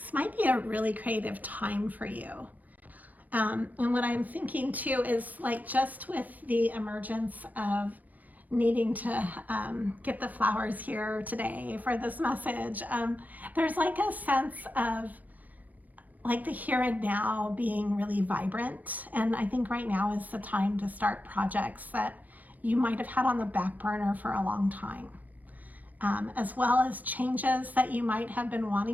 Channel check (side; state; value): left; late; 0.080 ms